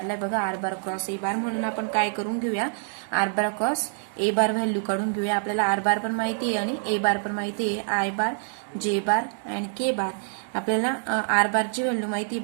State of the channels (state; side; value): silent; left; digital silence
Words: बघा आर बार क्रॉस ए बार म्हणून आपण काय करून घेऊया. R bar cross A bar value काढून घेऊया. आपल्याला आर बार पण माहिती आहे आणि ए बार पण माहिती आहे. I bar J bar and K बार. आपल्याला आर बारची व्हॅल्यू माहिती